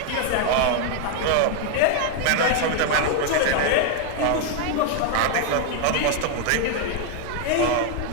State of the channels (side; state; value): both; different; correlation 0.00